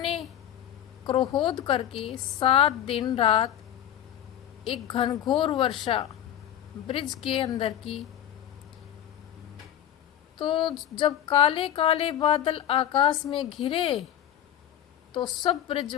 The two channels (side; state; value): right; quieter; 10.8 dB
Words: क्रोध करके 7 दिन रात एक घनघोर वर्षा ब्रिज के अंदर की, तो जब काले काले बादल आकाश में घिरे तो सब